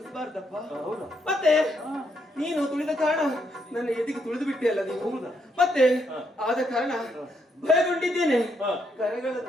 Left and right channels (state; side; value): normal; both; correlation 0.76